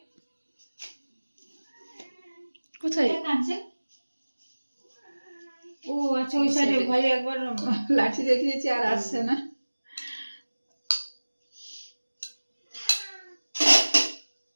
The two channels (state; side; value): inverted; both; correlation -1.00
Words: কোথায় কাঁদছে? ও আচ্ছা, ওই সাইডে ভাই একবার লাঠি দেখিয়েছি আর আসছে না।